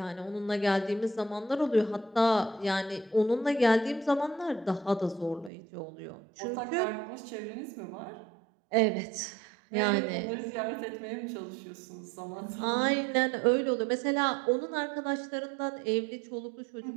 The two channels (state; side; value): drops out; left; at 5.5 s